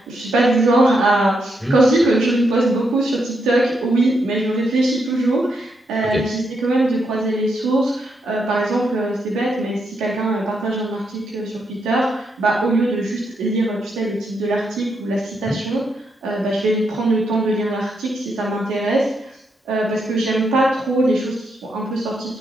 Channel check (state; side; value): normal; both; correlation 0.80